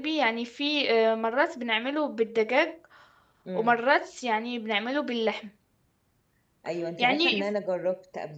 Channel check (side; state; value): both; identical; correlation 1.00